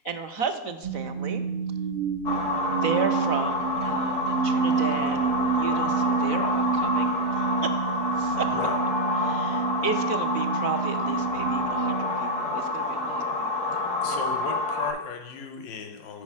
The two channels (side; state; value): right; late; 4.0 ms